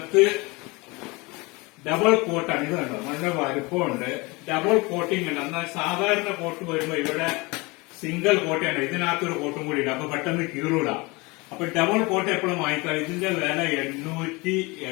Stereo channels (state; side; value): quieter; right; 25.3 dB